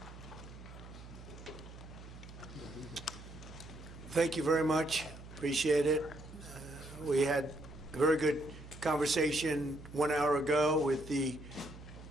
Thank you very much. Appreciate it. We had a very good conversation 1 hour ago with the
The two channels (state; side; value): noise; right; hum, 15 dB below the sound